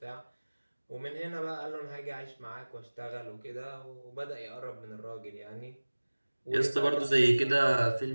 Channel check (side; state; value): both; inverted; correlation -1.00